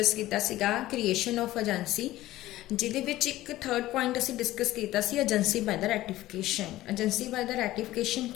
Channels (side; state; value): right; quieter; 15.9 dB